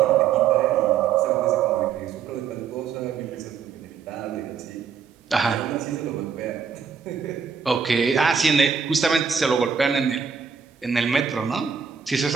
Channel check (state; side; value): quieter; left; 6.7 dB